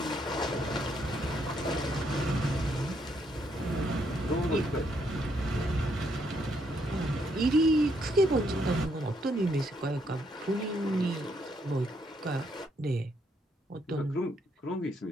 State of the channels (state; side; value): normal; both; correlation 0.74